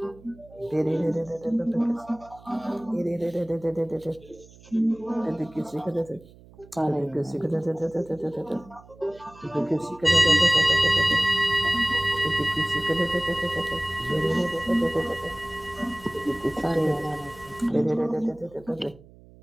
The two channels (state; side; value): noise; right; hum, 23 dB below the sound